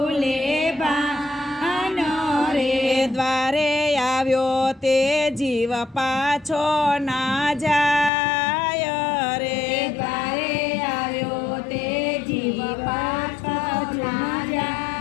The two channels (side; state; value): right; drops out; at 8.1 s